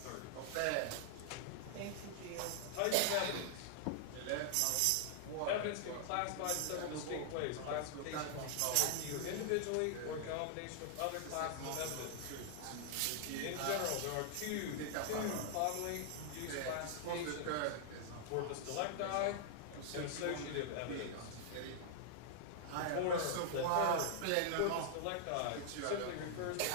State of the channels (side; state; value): both; different; correlation -0.01